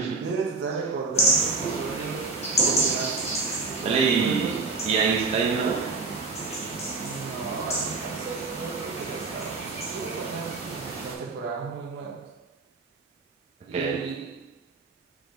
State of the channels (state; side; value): quieter; left; 3.8 dB